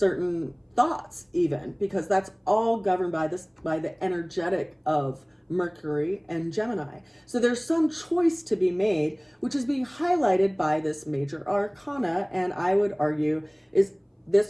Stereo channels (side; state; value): both; identical; correlation 1.00